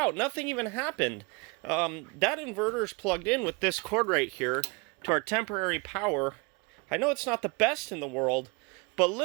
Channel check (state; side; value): quieter; left; 29.0 dB